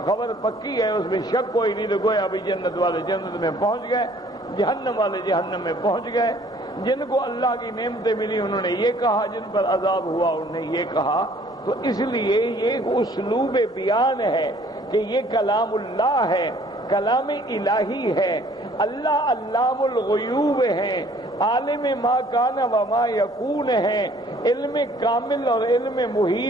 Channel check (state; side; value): normal; both; correlation 0.57